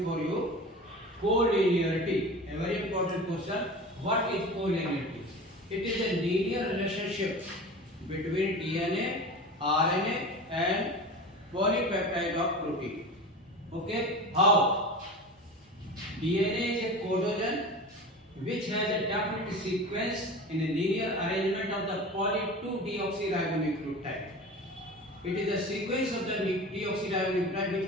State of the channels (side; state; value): both; normal; correlation 0.33